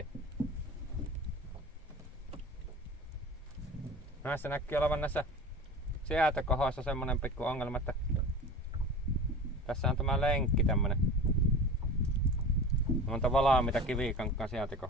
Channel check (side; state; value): both; normal; correlation 0.35